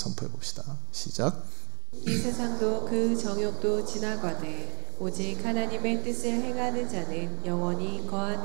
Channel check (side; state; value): left; quieter; 36.6 dB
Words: 봅시다. 시작. 이 세상도 그 정욕도 지나가되 오직 하나님의 뜻을 행하는 자는 영원히